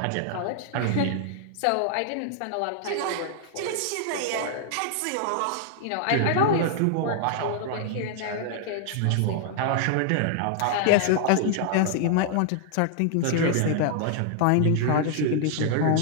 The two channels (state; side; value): different; both; correlation 0.00